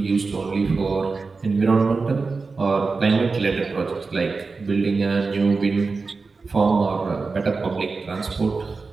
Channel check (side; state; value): left; quieter; 4.3 dB